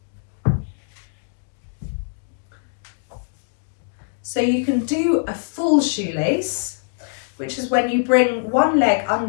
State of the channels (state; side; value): silent; right; digital silence